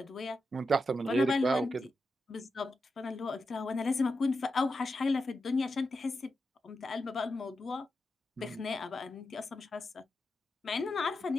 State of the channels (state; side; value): normal; both; correlation 0.88